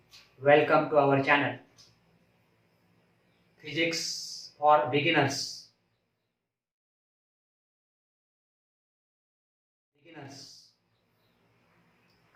welcome to our channel Physics for Beginners.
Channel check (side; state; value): both; identical; correlation 1.00